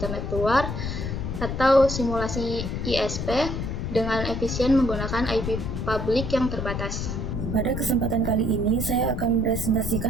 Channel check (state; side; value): noise; left; rumble, 3 dB below the sound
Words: luar, atau simulasi ISP dengan efisien menggunakan IP publik yang terbatas. Pada kesempatan kali ini, saya akan